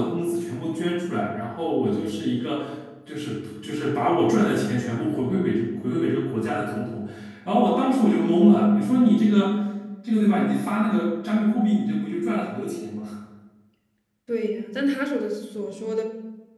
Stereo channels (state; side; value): identical; both; correlation 1.00